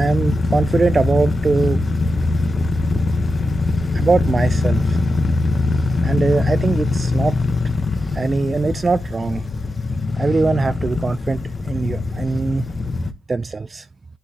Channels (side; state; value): both; normal; correlation 0.89